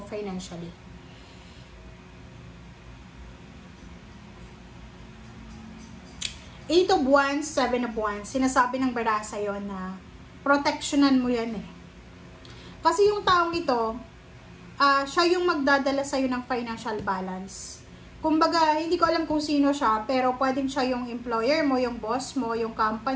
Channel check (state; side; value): identical; both; correlation 1.00